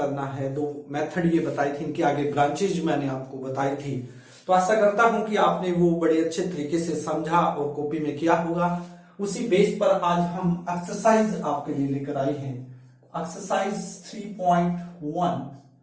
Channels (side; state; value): both; identical; correlation 1.00